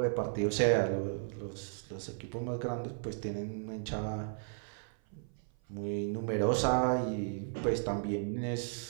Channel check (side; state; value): left; silent; 55 dB below the other